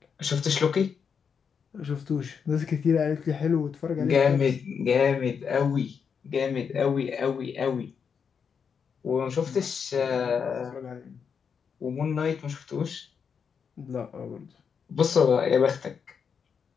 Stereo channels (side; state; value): right; quieter; 6.6 dB